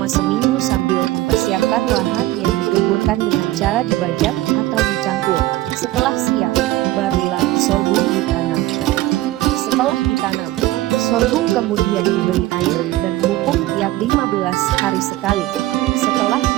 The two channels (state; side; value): quieter; left; 16.5 dB